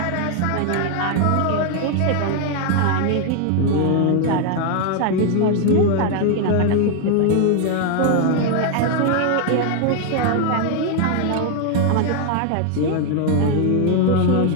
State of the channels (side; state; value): both; different; correlation 0.01